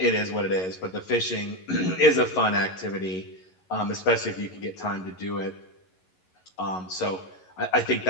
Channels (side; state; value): right; late; 11 ms